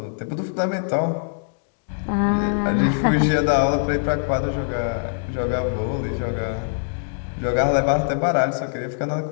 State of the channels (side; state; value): right; silent; digital silence